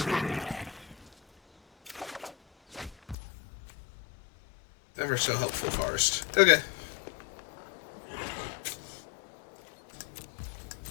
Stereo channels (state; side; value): drops out; right; at 3.2 s